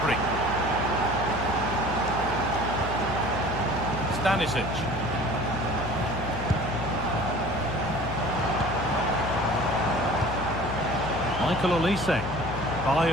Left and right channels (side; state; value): left; noise; hum, 8 dB below the sound